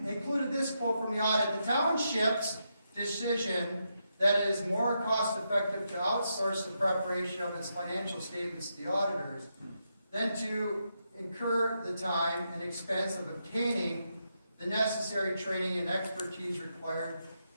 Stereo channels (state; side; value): inverted; both; correlation -0.83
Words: included this quote from the audit. The township's decision that it is more cost-effective to outsource the preparation of its financial statements to the auditors than to incur the time and expense of obtaining the necessary training and expertise required